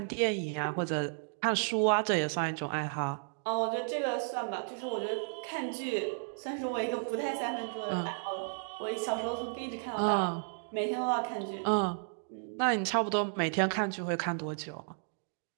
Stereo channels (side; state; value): left; silent; digital silence